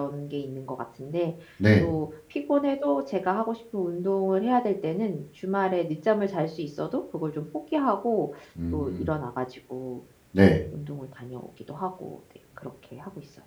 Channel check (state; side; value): identical; both; correlation 1.00